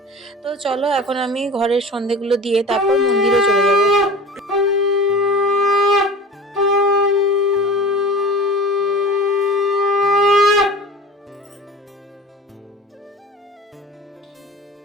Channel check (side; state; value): both; normal; correlation 0.37